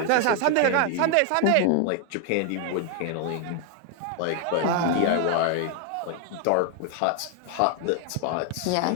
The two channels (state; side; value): different; both; correlation 0.00